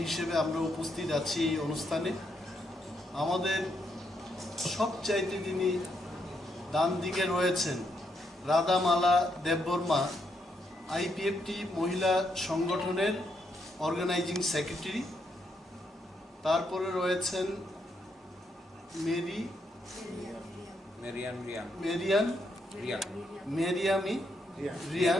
হিসেবে আমরা উপস্থিত আছি এই অনুষ্ঠানে। আমাদের সবচাইতে যিনি ডান দিকে রয়েছেন রাধামালা দেববর্মা, আইপিএফটি মহিলা সংগঠনের অর্গানাইজিং সেক্রেটারি। তারপরে রয়েছেন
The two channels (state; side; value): normal; both; correlation 0.78